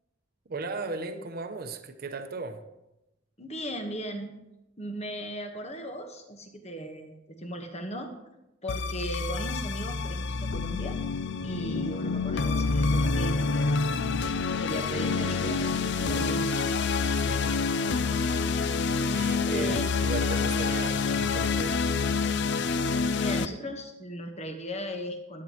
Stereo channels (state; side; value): quieter; right; 3.3 dB